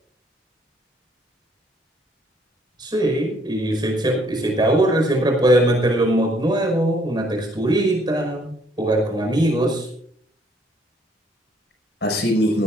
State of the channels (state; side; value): normal; both; correlation 0.65